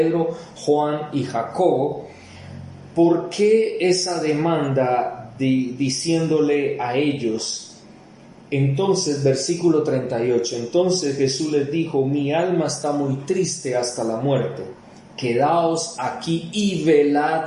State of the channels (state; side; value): identical; both; correlation 1.00